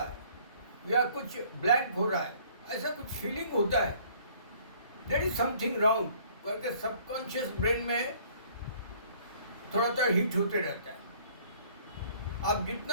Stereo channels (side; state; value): both; inverted; correlation -0.57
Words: या कुछ ब्लैंक हो रहा है, ऐसा कुछ फीलिंग होता है। देयर इज समथिंग रॉन्ग करके सबकॉन्शियस ब्रेन में थोड़ा सा हिट होते रहता है। आप